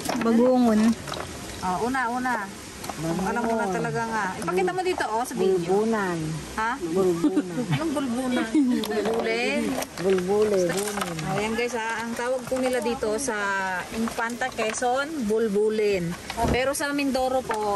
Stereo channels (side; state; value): both; identical; correlation 1.00